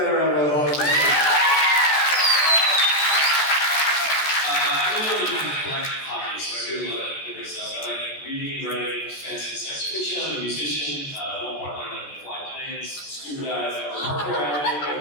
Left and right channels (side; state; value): right; late; 14 ms